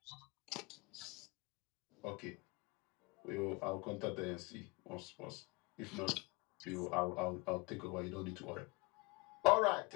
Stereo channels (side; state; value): right; quieter; 26.4 dB